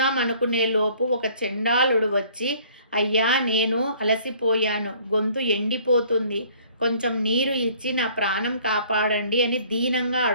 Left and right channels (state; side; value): inverted; both; correlation -0.56